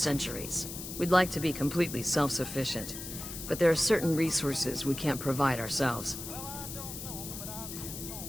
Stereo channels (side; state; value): left; noise; hiss, 9 dB below the sound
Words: We'd like to be completely self-sufficient, but there are certain resources we can't provide ourselves.